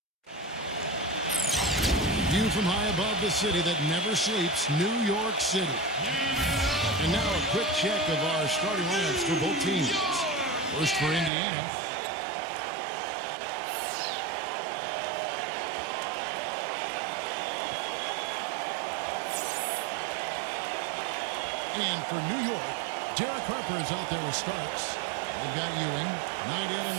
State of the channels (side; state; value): left; drops out; at 11.3 s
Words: View from high above the city that never sleeps, New York City. And now a quick check of our starting lineups for both teams. First for Indiana. And for New York, Derek Harper is out there with Starks. They've got Ewing, night in and